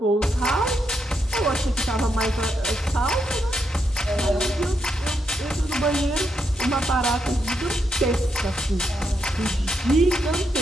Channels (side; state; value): both; normal; correlation 0.81